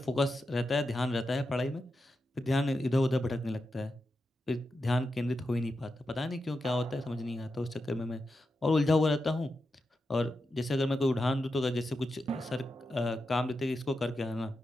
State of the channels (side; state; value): both; normal; correlation 0.88